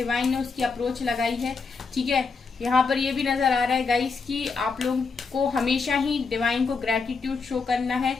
ने उसकी अप्रोच लगाई है। ठीक है, यहाँ पर ये भी नजर आ रहा है गाइस कि आप लोगों को हमेशा ही डिवाइन को ग्रेटिट्यूड शो करना है,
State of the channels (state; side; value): quieter; right; 4.7 dB